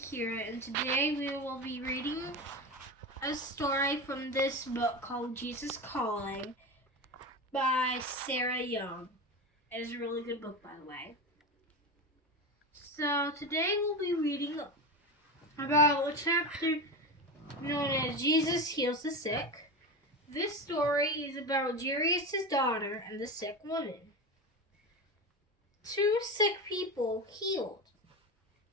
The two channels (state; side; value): normal; both; correlation 0.22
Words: Akira, and today we will be reading a story from this book called Jesus Calling by Sarah Young. It is a really good book, by the way. So today we'll be reading about a chapter known as Jesus Heals the Sick. This story is about Jairus' daughter and the sick woman. Two sick people healed.